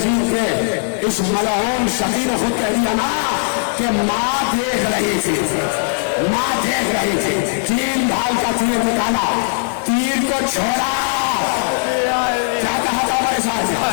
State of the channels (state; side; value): silent; right; digital silence